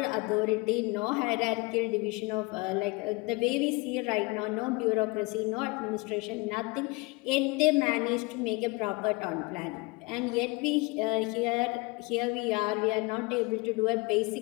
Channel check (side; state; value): right; quieter; 26.0 dB